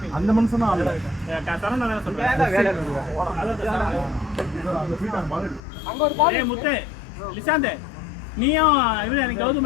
அந்த மனுஷனும் ஆடல சரவணா வேற சொல்றேன் அங்க ஒரு பால் ஏய் முத்து லிசாந்தே நீயும் இவரு எனக்கு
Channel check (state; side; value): drops out; right; at 5.6 s